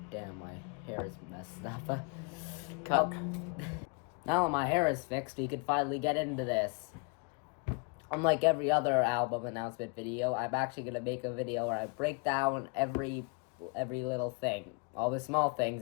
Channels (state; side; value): quieter; right; 33.5 dB